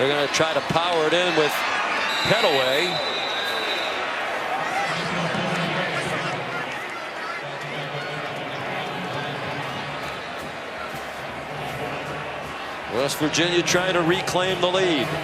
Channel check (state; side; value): identical; both; correlation 1.00